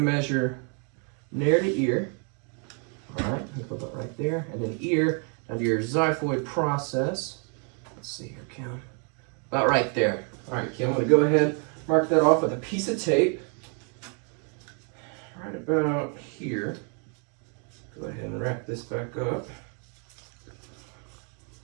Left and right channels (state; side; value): quieter; left; 39.5 dB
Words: measure nair to ear. All right, I'm going to put that right there. And then ear under your xiphoid process. Let's see here, Kim. About right there. All right, Kim, I'm going to go ahead, mark that off with a piece of tape. Right about here. Go ahead and wrap this back up.